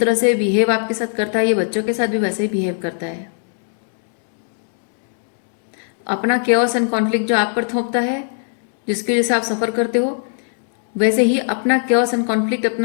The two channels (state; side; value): silent; right; digital silence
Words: से बिहेव आपके साथ करता है, ये बच्चों के साथ भी वैसे ही बिहेव करता है। अपना केओस एंड कॉन्फ्लिक्ट जो आप पर थोपता है, जिसकी वजह से आप सफ़र करते हो, वैसे ही अपना केओस एंड कॉन्फ्लिक्ट,